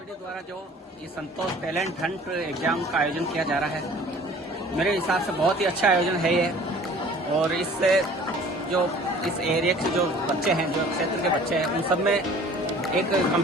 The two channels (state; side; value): normal; both; correlation 0.49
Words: द्वारा जो ये संतोष टैलेंट हंट एग्जाम का आयोजन किया जा रहा है, मेरे हिसाब से बहुत ही अच्छा आयोजन है ये। और इससे जो इस एरिया के जो बच्चे हैं, जो क्षेत्र के बच्चे हैं, उन सब में एक